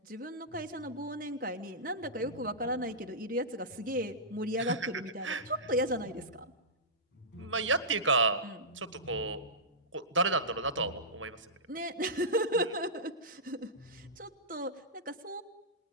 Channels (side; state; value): both; normal; correlation -0.15